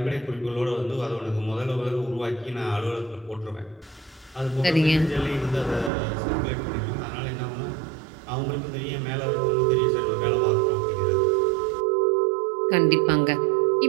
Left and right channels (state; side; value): drops out; left; at 5.9 s